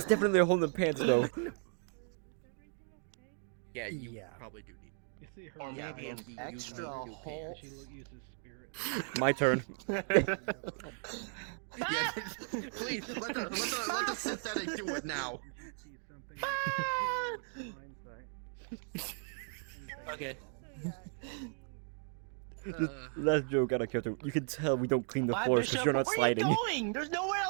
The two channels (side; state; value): left; silent; 54 dB below the other